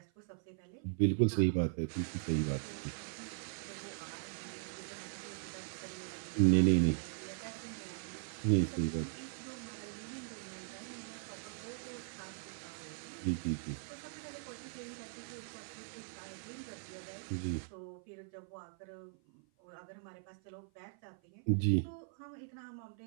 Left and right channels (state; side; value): silent; left; 52 dB below the other